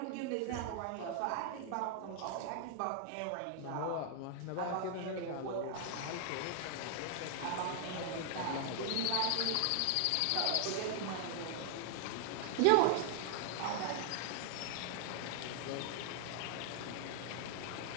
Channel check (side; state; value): both; different; correlation 0.00